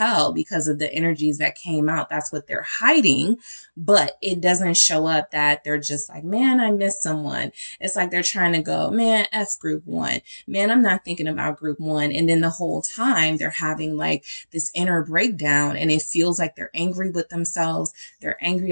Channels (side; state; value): both; inverted; correlation -1.00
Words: because of the energies that came out. That's what they're hiding, but it doesn't show up that they're just like, man, I miss someone. It's like they're trying to go, man, F group one, man, I'm not thinking about group one. And then the whole time they're having like like this inner breakdown, and it feels like they're angry with themselves. They're angry